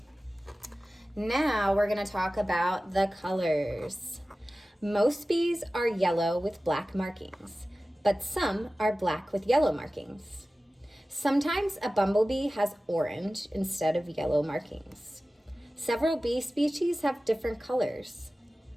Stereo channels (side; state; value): both; normal; correlation 0.96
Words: Now we're gonna talk about the colors. Most bees are yellow with black markings, but some are black with yellow markings. Sometimes a bumblebee has orange instead of yellow markings. Several bee species have different colors.